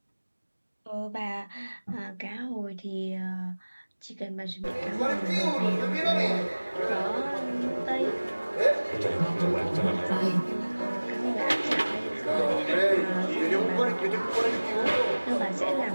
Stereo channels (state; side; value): inverted; both; correlation -1.00